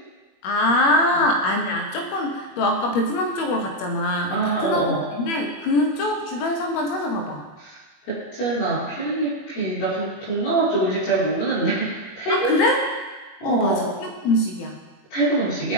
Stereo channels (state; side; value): late; right; 21 ms